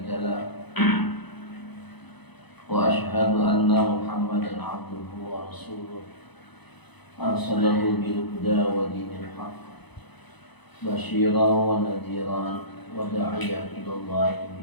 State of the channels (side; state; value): right; late; 0.99 ms